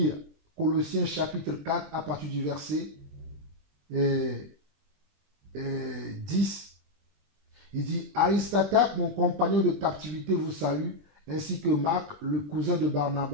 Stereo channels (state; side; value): late; left; 20 ms